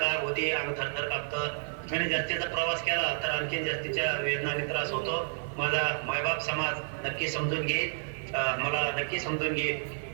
आग होती, अंग थरथर कापतं आणि जास्तीचा प्रवास केला तर आणखी जास्तीच्या वेदना आणि त्रास होतो. माझा मायबाप समाज नक्की समजून घेईल, मला नक्की समजून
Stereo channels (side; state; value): left; silent; 58 dB below the other